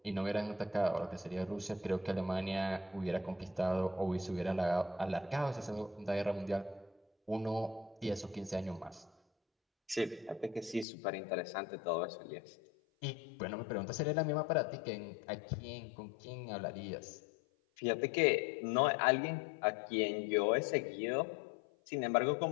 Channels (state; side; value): drops out; right; at 10.9 s